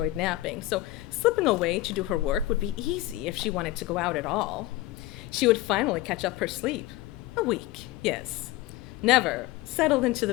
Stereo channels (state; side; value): quieter; right; 16.9 dB